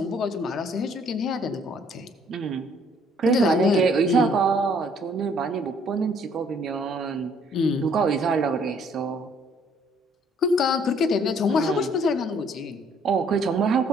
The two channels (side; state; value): both; normal; correlation 0.62